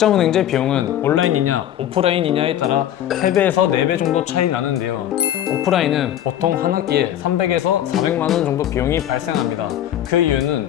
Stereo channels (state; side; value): quieter; right; 11.5 dB